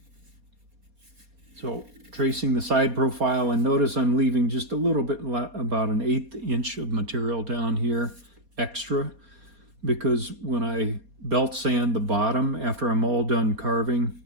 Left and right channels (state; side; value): late; left; 4.2 ms